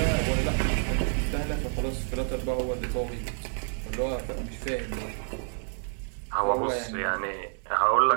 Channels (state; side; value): silent; left; 59 dB below the other